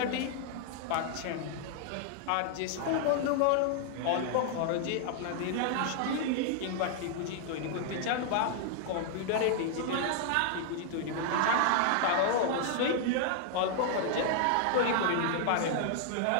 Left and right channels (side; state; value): both; different; correlation 0.00